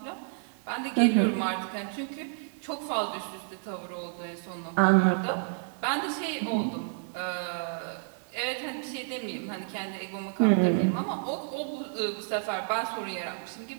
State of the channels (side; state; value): left; silent; 58 dB below the other